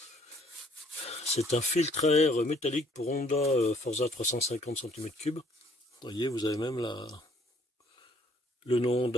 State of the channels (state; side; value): normal; both; correlation 0.61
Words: filtre à air métallique pour Honda Forza 350 cm3. Vous voyez, vous avez même le nom